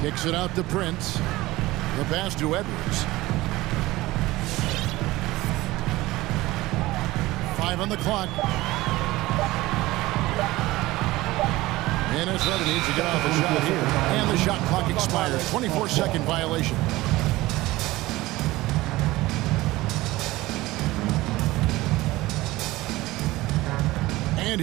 Kicks it out to Prince. The pass to Edwards. 5 on the clock. Minnesota needs to get off a shot here. And the shot clock expires. 24-second violation. And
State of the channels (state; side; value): quieter; left; 18.7 dB